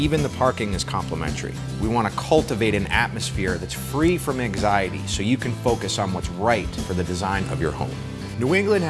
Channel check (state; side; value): identical; both; correlation 1.00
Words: the parking is complimentary. We want to cultivate an atmosphere that's free from anxiety so you can focus on what's right for the design of your home. New England